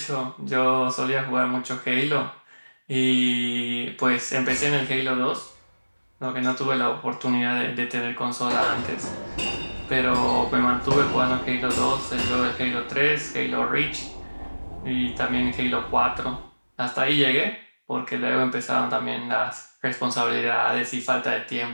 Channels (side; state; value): both; inverted; correlation -1.00